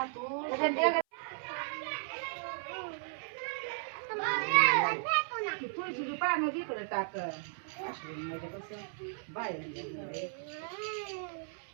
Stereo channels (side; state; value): left; silent; 54 dB below the other